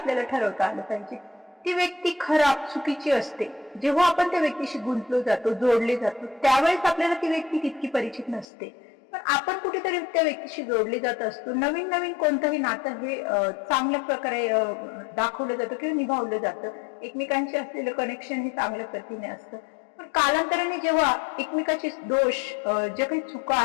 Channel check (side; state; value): right; drops out; at 8.5 s